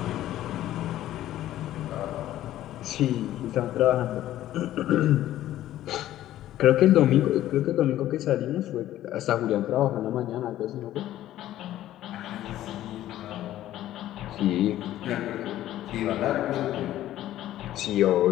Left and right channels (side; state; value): right; quieter; 13.5 dB